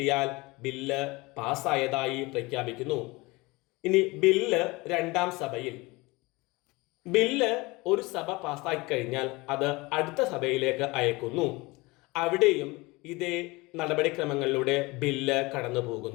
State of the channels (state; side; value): quieter; right; 23.4 dB